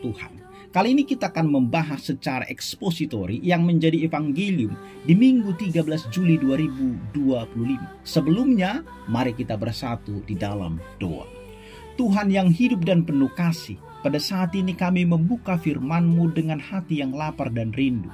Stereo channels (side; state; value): both; identical; correlation 1.00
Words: Kali ini kita akan membahas secara ekspositori yang menjadi evangelium di Minggu 13 Juli 2025. Sebelumnya, mari kita bersatu di dalam doa. Tuhan yang hidup dan penuh kasih, pada saat ini kami membuka firman-Mu dengan hati yang lapar dan rindu.